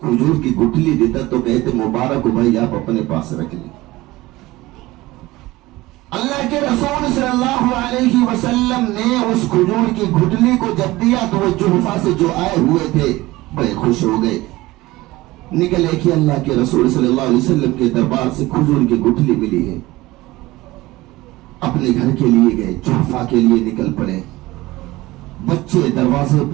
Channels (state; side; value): quieter; left; 19.1 dB